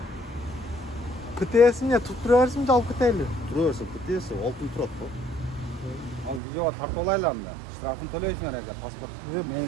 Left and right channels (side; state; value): left; drops out; at 6.4 s